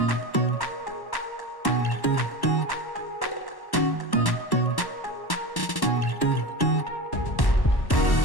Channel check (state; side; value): late; right; 1.1 ms